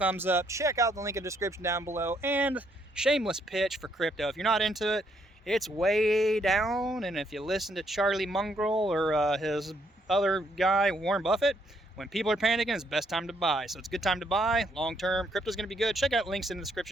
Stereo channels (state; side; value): normal; both; correlation 0.72